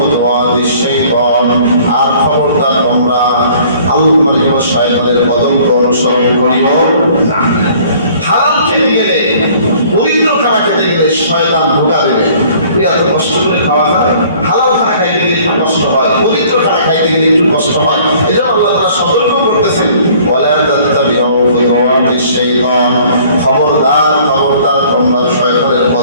শাইতান আর খবরদার তোমরা আল্লাহর শয়তানের পদঙ্ক অনুসরণ করিও না। হালাল খেতে গেলে, পবিত্র খানা খেতে গেলে শয়তান ধোঁকা দেবে। তুই এত কষ্ট করে খাওয়া যায়, হালাল খানা খাইতে গেলে একটু কষ্ট হয়, পবিত্র খানা খাইতে গেলে একটু কষ্ট হয়। এই জন্য আল্লাহ তাআলা সতর্ক করতেছেন, ওয়ালা তাত্তাবিউ খুতুওয়াতিশ শাইতান খবরদার খবরদার তোমরা শয়তানের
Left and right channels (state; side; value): inverted; both; correlation -0.55